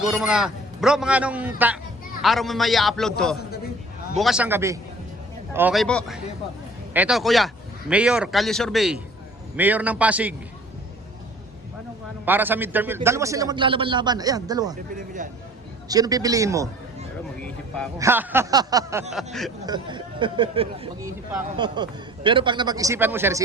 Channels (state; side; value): normal; both; correlation 0.49